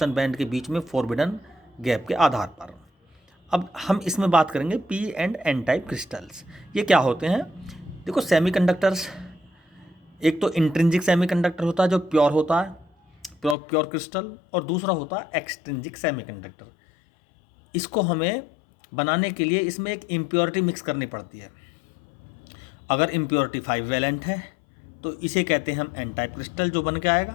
बैंड के बीच में फॉरबिडन गैप के आधार पर। अब हम इसमें बात करेंगे P and N type crystals. ये क्या होते हैं? देखो, सेमीकंडक्टर्स, एक तो इंट्रिंसिक सेमीकंडक्टर होता है जो प्योर होता है, प्योर क्रिस्टल, और दूसरा होता है एक्सट्रिंसिक सेमीकंडक्टर। इसको हमें बनाने के लिए इसमें एक इम्प्योरिटी मिक्स करनी पड़ती है। अगर इम्प्योरिटी 5 वैलेंट है तो इसे कहते हैं हम एन टाइप क्रिस्टल जो बन के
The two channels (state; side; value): drops out; right; at 13.6 s